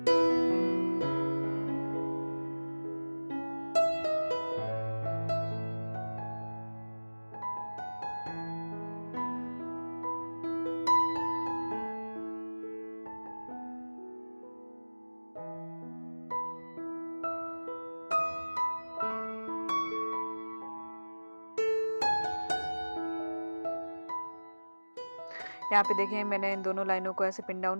यहाँ पे देखें मैंने इन दोनों लाइनों को ऐसे पिन डाउन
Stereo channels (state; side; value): inverted; both; correlation -1.00